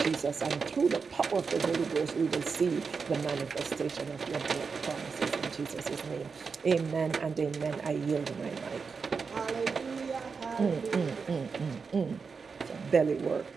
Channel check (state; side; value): quieter; left; 5.2 dB